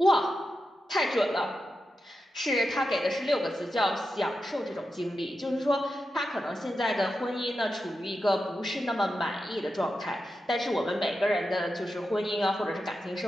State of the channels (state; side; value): normal; both; correlation 0.89